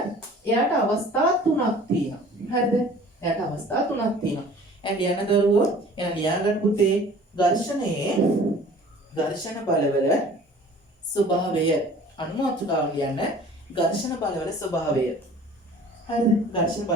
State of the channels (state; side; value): normal; both; correlation 0.48